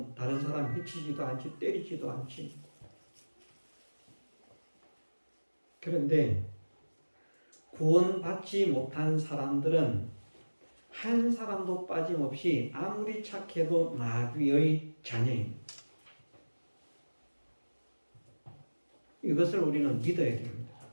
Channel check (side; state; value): both; inverted; correlation -1.00